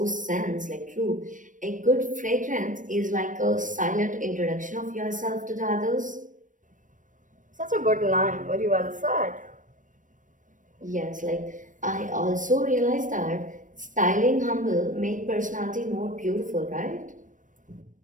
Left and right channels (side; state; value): left; late; 0.38 ms